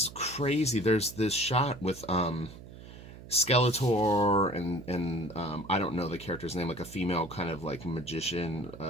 crazy. There's this shot with Skeletor and I don't know the character's name, like a female kind of like magician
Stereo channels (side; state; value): right; noise; hum, 16 dB below the sound